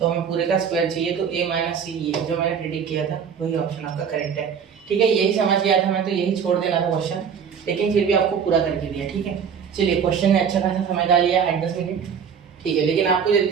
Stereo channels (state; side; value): quieter; left; 7.1 dB